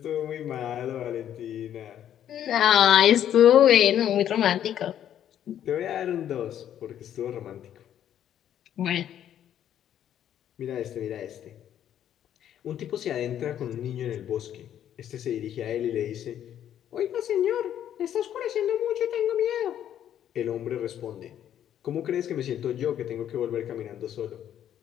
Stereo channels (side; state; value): right; quieter; 10.4 dB